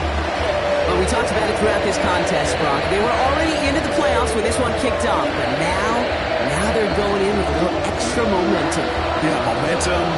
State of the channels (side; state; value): both; identical; correlation 1.00